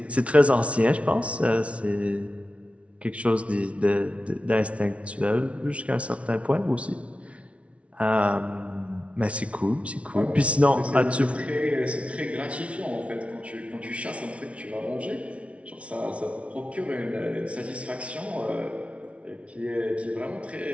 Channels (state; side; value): late; left; 0.063 ms